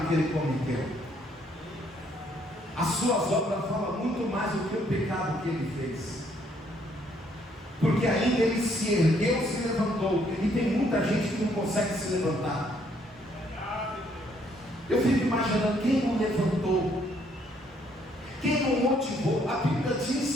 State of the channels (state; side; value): normal; both; correlation 0.68